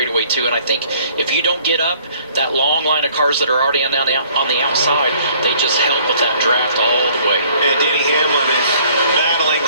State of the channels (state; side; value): inverted; both; correlation -0.58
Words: too. And I think if you don't get up, that long line of cars that are already on the outside, they just help with that draft all the way. And Denny Hamlin is battling